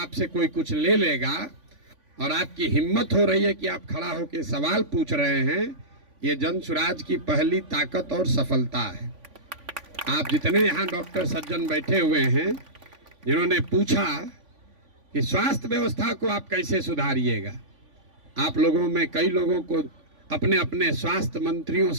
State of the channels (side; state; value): left; late; 3.5 ms